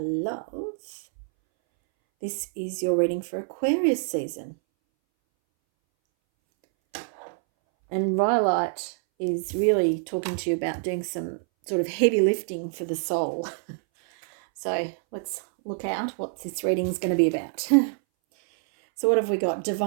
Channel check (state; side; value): silent; left; 61 dB below the other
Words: this is your reading for Aquarius season. And Rhyolite is really talking to you about doing some sort of heavy lifting for the soul. So let's look out what this reading is going to be about. So what have we got?